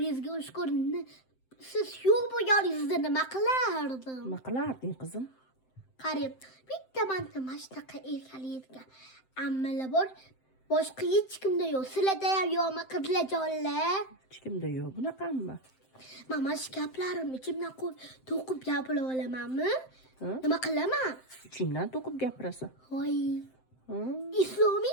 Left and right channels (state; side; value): late; right; 7.7 ms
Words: ushkur. Siz yo'q bo'lganingizda nima qilardim? Nima qilarding qizim? Qarang, bitta mana shunaqa erkalaydigan ammalar bor. Boshqa hech kimda yo'q. Sizlarda ham yo'qmi qizlarjonlar? Hech kimda yo'q bunaqami? Mana shu gaplarimni ichimdan to'qib gapira olamanmi? Nima qilaman? Ichingdan to'qib gapirasan. Voy.